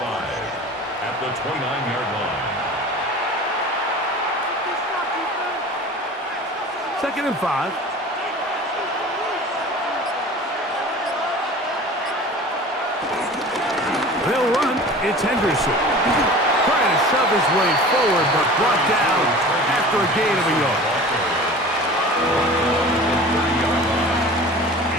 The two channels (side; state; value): both; normal; correlation 0.40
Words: 5 at the 29-yard line. 2nd and 5. They'll run. It's Henderson. Trying to shove his way forward, but brought down after a gain of a yard.